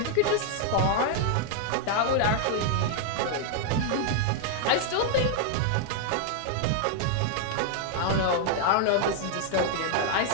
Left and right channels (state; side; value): different; both; correlation -0.01